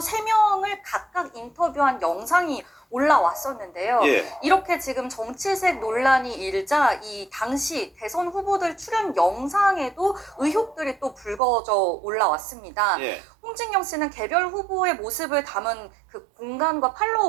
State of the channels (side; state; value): left; drops out; at 11.4 s